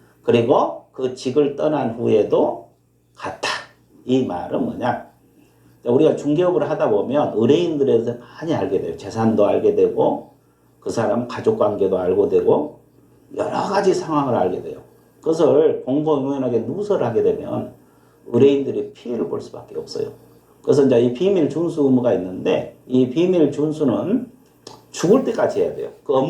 그리고 그 직을 떠난 후에도 같다. 이 말은 뭐냐? 우리가 중개업을 하다 보면 의뢰인들에 대해서 많이 알게 돼요. 재산도 알게 되고 그 사람 가족관계도 알고 되고 여러 가지 상황을 알게 돼요. 그것을 공공연하게 누설하게 되면 의뢰인들이 피해를 볼 수밖에 없어요. 그래서 이제 이 비밀 준수 의무가 있는데 이 비밀 준수는 죽을 때까지 해야 돼요. 그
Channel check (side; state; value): both; identical; correlation 1.00